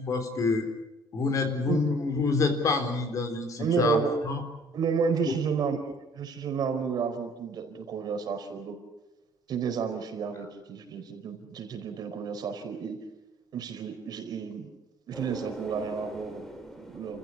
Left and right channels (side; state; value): both; normal; correlation 0.55